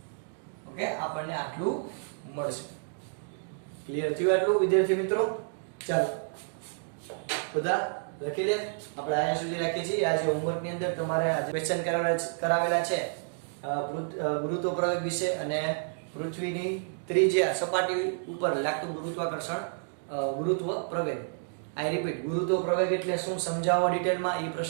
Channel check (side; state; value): left; silent; digital silence